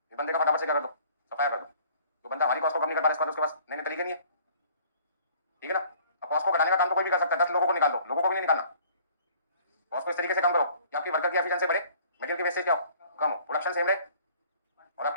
इस बंदे का फटाफट से क्या कर दो, सफाया कर दो। तो बंदा हमारी कॉस्ट को कम नहीं कर पा रहा, उसके पास नए नए तरीके नहीं है। ठीक है ना? अब कॉस्ट को घटाने का काम तो कोई भी कर सकता है, 10 लोगों को निकाल दो, लोगों को भी नहीं निकालना। कॉस्ट को इस तरीके से कम करो कि आपकी वर्कर की एफिशिएंसी बढ़े, मटेरियल की वेस्टेज क्या हो, कम हो, प्रोडक्शन सेम रहे और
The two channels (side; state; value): both; inverted; correlation -0.53